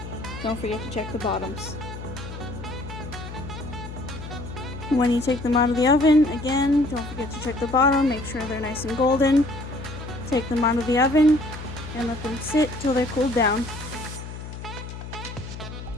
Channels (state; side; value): noise; left; hum, 10 dB below the sound